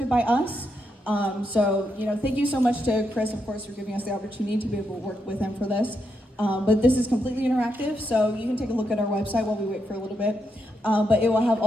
by us. So, thank you so much to Chris, of course, for giving us the opportunity to be able to work with him for this. But this is completely interactive, so you can take a look at our website while we wait for a little bit. But it will have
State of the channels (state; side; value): normal; both; correlation 0.82